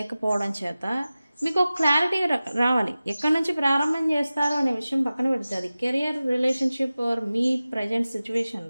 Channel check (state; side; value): inverted; both; correlation -0.96